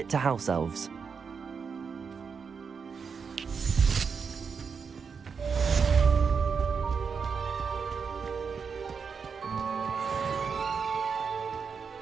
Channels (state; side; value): quieter; left; 5.9 dB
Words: to House Elves.